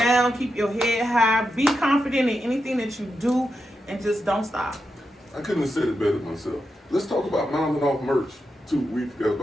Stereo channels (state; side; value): normal; both; correlation 0.87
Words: keep your head high, be confident in anything that you do, and just don't stop. I couldn't have said it better myself. Let's talk about Mountain Off merch too. We forgot